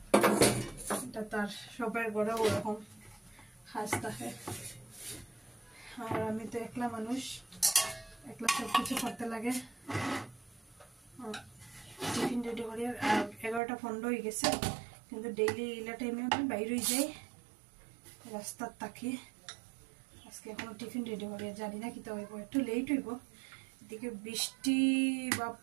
এটা তার সবার ঘরে ওরকম কাজ থাকে। আর আমি তো একলা মানুষ, একলা সব কিছু করতে লাগে। টিফিন রেডি করি। 11টা 15 হয়ে গেছে, কিন্তু ডেইলি এলা টাইমে আমি বাইর হয়ে যাই রাস্তার তাকে। আজকে এখনো টিফিন রেডি করি, জানি না কিতা হইব, একটু লেট হইব। এদিকে বৃষ্টি,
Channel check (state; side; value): drops out; left; at 13.6 s